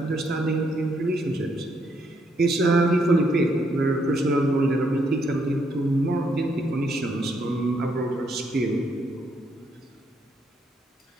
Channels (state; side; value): normal; both; correlation 0.74